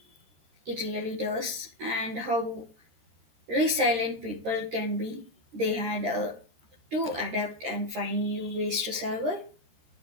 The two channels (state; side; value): late; left; 13 ms